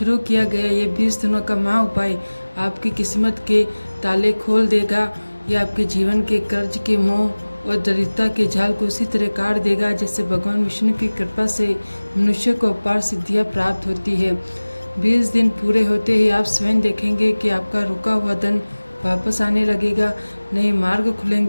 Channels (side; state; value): both; inverted; correlation -1.00